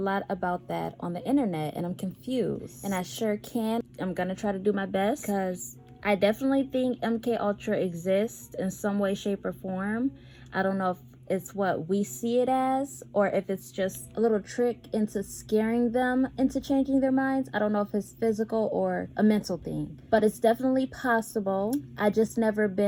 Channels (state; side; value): identical; both; correlation 1.00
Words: about that on the internet and I'm confused. And I sure can. I'm gonna try to do my best, because I definitely think MK Ultra exists in some way, shape, or form. I don't know if it's what we see it as, or if it's just a little trick into scaring them into changing their minds. I don't know if it's physical or a mental thing, but it's definitely possible. I just never